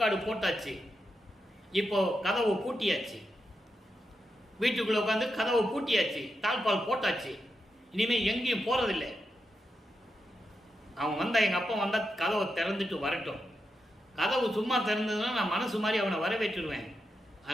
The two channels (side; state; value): both; normal; correlation 0.86